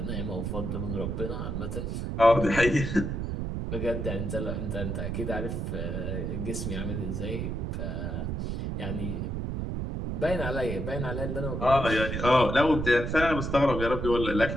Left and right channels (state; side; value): noise; right; rumble, 3 dB below the sound